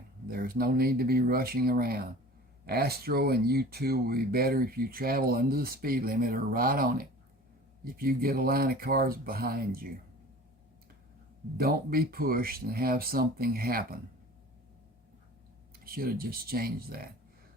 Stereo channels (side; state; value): both; normal; correlation 0.42